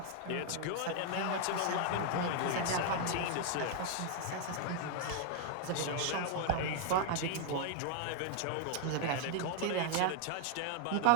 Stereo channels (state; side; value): different; both; correlation 0.00